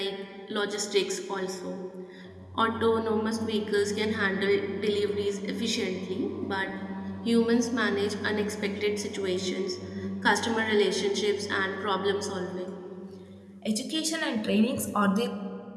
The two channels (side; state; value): both; identical; correlation 1.00